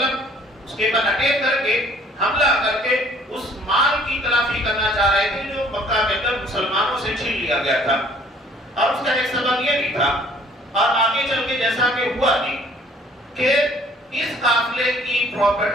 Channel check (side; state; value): both; normal; correlation 0.57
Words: اس کے بعد اٹیک کر کے، حملہ کر کے اس مال کی تلافی کرنا چاہ رہے تھے جو مکہ کے اندر مسلمانوں سے چھین لیا گیا تھا. اور اس کا ایک سبب یہ بھی تھا، اور آگے چل کے جیسا کہ ہوا نہیں، کہ اس قافلے کی